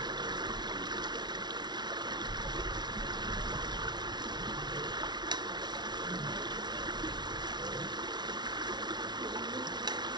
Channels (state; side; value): late; left; 0.20 ms